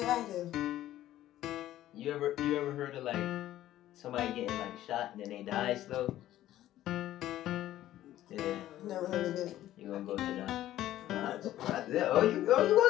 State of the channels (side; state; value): right; quieter; 13.6 dB